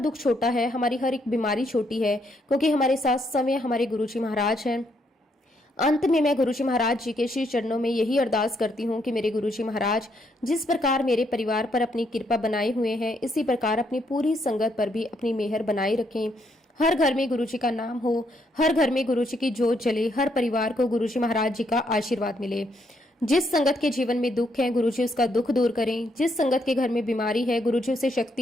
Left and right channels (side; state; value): both; normal; correlation 0.74